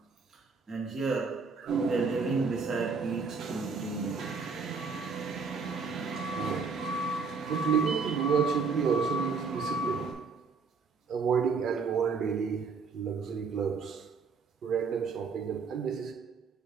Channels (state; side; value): quieter; left; 5.0 dB